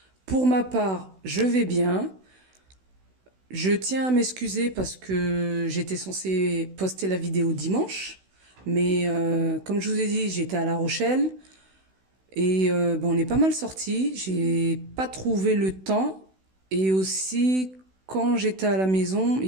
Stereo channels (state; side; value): late; left; 16 ms